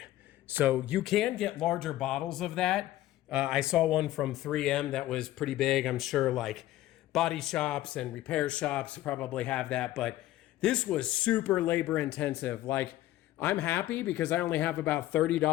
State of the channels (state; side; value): quieter; right; 15.0 dB